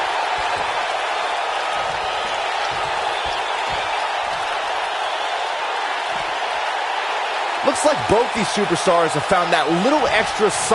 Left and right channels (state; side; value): identical; both; correlation 1.00